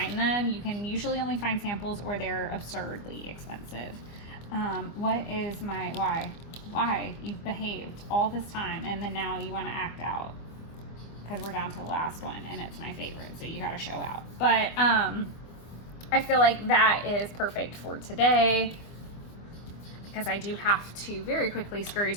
them, you can usually only find samples or they're absurdly expensive. What is my, why you've behaved all this time and then now you want to act out? Because we're down to the last one and it's my favorite, so you got to show out. But I feel like that is perfect for today, because I do have to very quickly scurry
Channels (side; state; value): right; late; 25 ms